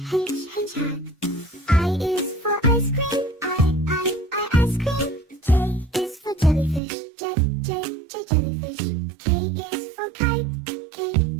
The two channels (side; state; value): left; drops out; at 6.8 s